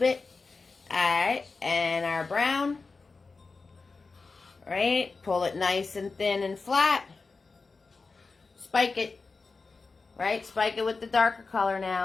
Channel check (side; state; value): right; quieter; 4.2 dB